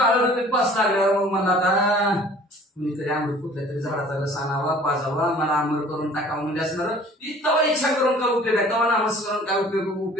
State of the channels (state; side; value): normal; both; correlation 0.50